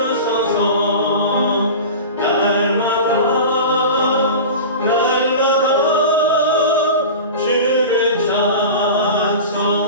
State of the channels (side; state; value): both; inverted; correlation -0.31